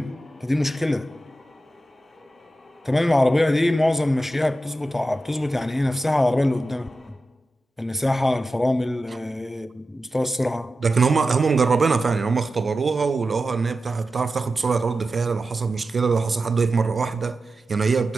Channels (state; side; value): normal; both; correlation 0.92